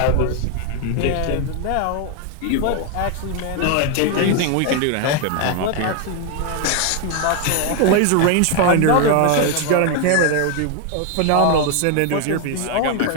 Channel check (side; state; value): both; different; correlation 0.01